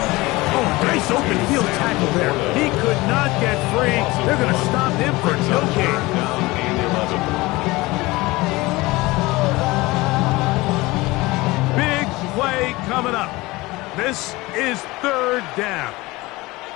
Oh, nice open field tackle there. He could not get free. They're going to stop him for no gain. Down and 11. Big play coming up. This is 3rd down.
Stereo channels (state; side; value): quieter; right; 21.2 dB